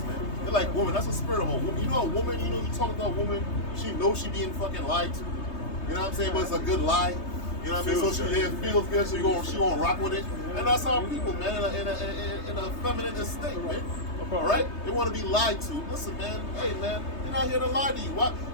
man. They're like women. That's the spirit of a woman. You know, a woman, you talk about a woman, she knows she being fucking lied to. You know what I'm saying? But it's a good lie. You know what I mean? So she feels good, so she gonna rock with it. And that's our people, man, in a feminine state, man. All right? They want to be lied to. Listen, man. Hey, man, we're not here to lie to you.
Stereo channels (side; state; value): right; late; 3.2 ms